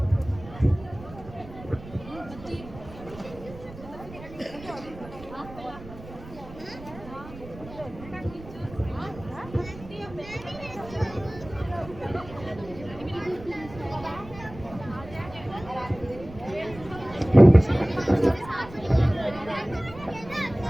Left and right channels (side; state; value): right; noise; rumble, 16 dB below the sound